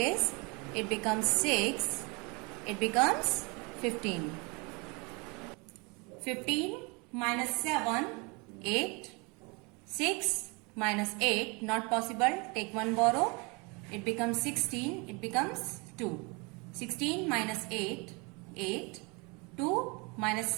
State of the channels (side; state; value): left; quieter; 29.2 dB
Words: It becomes 6. It becomes 15. 15 minus 7, 8. 6 minus 8, not possible. Take 1 borrow. It becomes 16. It becomes 2. 16 minus 8, 8. 2 minus